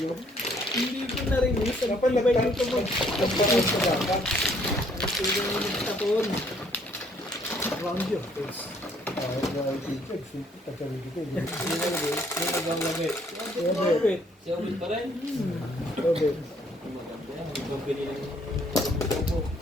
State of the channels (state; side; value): normal; both; correlation 0.64